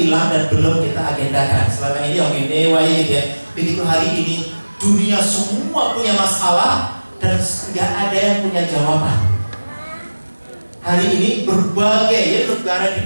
hilang dan belum kita agendakan. Selama ini yang ini gitu ya. Begitu hari ini dunia semua punya masalah dan nggak ada yang punya jawaban. Hari ini berbagai ya negara di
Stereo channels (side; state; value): both; inverted; correlation -1.00